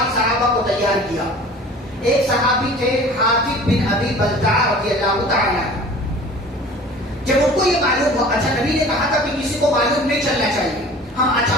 صحابہ کو تیار کیا۔ ایک صحابی تھے حاتب بن ابی بلتع رضی اللہ تعالیٰ عنہ۔ جب ان کو یہ معلوم ہوا، اچھا نبی نے کہا تھا کہ کسی کو معلوم نہیں چلنا چاہیے، ہم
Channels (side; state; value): both; normal; correlation 0.44